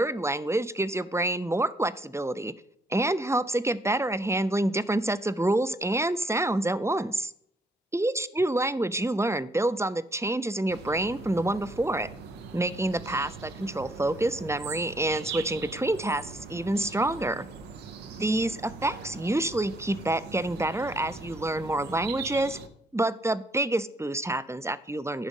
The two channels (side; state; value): both; normal; correlation 0.68